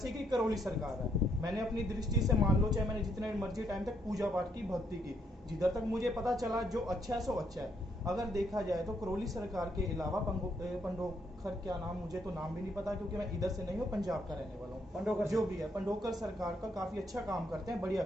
कि करौली सरकार है, मैंने अपनी दृष्टि से मान लो, चाहे मैंने जितने मर्जी टाइम तक पूजा पाठ की, भक्ति की, जिधर तक मुझे पता चला जो अच्छा है सो अच्छा है। अगर देखा जाए तो करौली सरकार के अलावा पंडोकर, क्या नाम, मुझे तो नाम भी नहीं पता क्योंकि मैं इधर से नहीं हूँ, पंजाब का रहने वाला हूँ। पंडोकर जो भी है, पंडोकर सरकार का काफी अच्छा काम करते हैं, बढ़िया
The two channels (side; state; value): both; normal; correlation 0.73